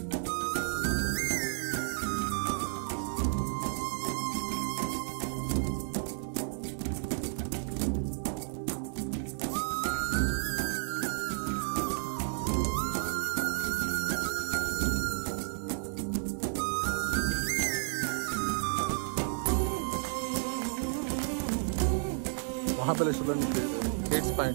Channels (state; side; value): silent; left; 56 dB below the other